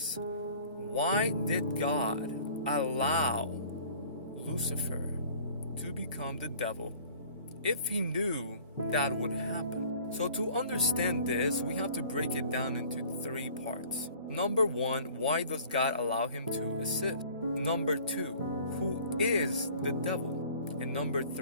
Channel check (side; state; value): both; inverted; correlation -0.49